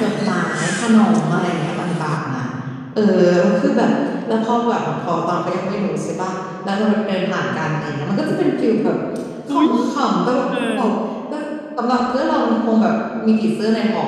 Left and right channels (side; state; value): both; identical; correlation 1.00